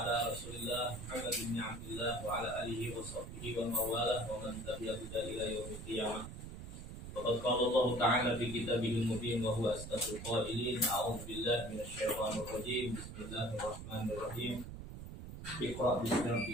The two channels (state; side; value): noise; right; rumble, 10 dB below the sound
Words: Rasulillah Muhammad bin Abdullah wa ala alihi wa sahbihi wa mawalah wa man tabi'ahu ila yaumil qiyamah. Faqad qala Allah Ta'ala fi kitabihil mubin wa huwa asdaqul qailin. A'udzu billahi minasyaitonir rajim. Bismillahirrahmanirrahim. Iqra bismi